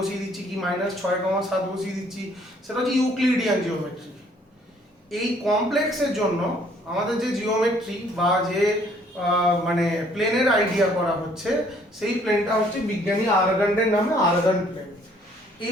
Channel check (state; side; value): normal; both; correlation 0.61